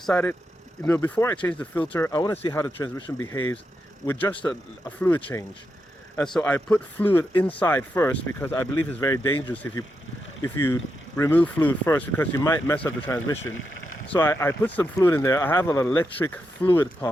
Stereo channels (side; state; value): both; normal; correlation 0.85